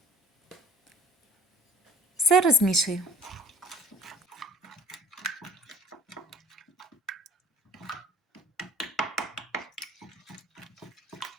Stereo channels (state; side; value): normal; both; correlation 0.50